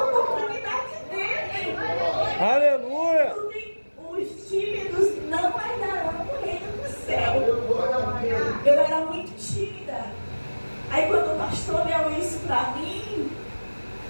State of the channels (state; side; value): inverted; both; correlation -1.00